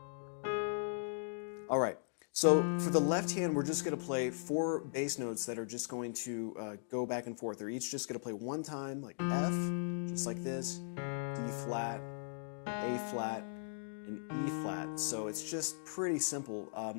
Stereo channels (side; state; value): right; silent; digital silence